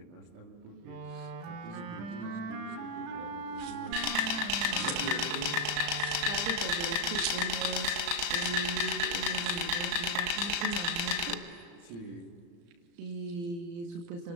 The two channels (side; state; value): left; late; 35 ms